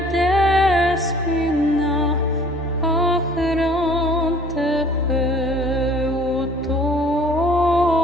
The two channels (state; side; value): normal; both; correlation 0.53